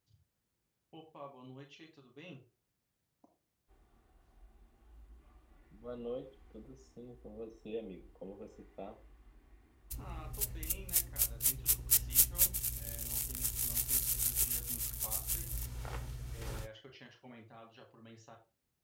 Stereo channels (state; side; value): identical; both; correlation 1.00